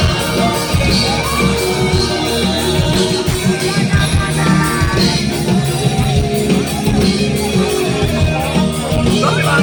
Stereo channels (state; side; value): identical; both; correlation 1.00